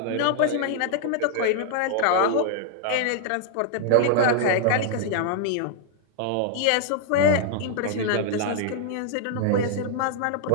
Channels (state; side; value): different; both; correlation -0.01